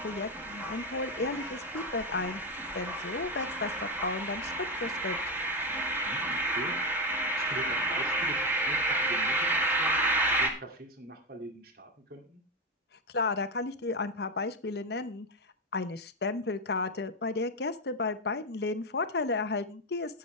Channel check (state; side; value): normal; both; correlation 0.10